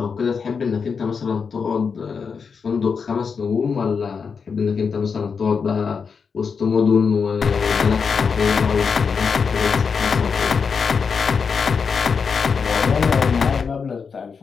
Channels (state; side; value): quieter; right; 5.7 dB